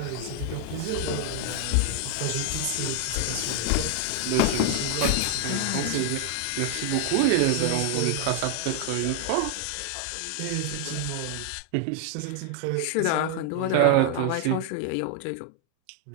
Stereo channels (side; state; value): both; different; correlation 0.00